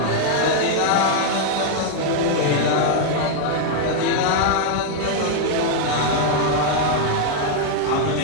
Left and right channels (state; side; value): different; both; correlation 0.00